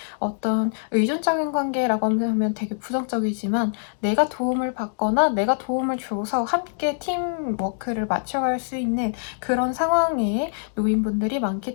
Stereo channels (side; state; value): right; silent; digital silence